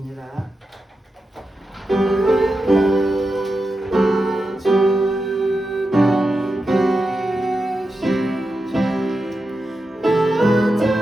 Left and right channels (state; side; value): normal; both; correlation 0.89